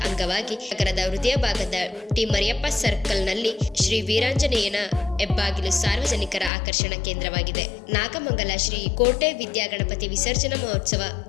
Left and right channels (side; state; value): right; drops out; at 6.5 s